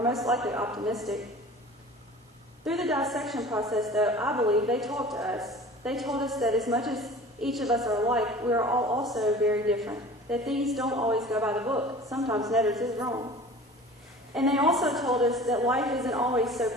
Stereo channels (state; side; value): normal; both; correlation 0.42